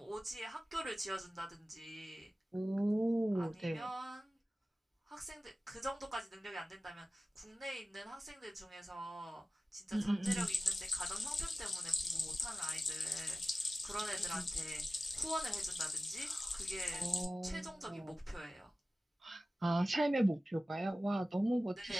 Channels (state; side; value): normal; both; correlation 0.96